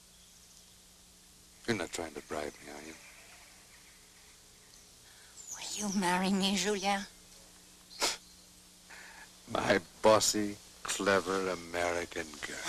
You're not trying to bribe me, are you? Will you marry me, Julien? My bossy, clever American girl.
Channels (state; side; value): identical; both; correlation 1.00